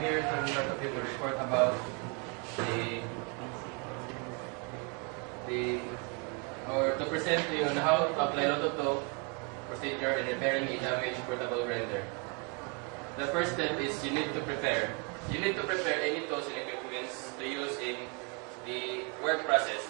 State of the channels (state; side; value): quieter; left; 34.8 dB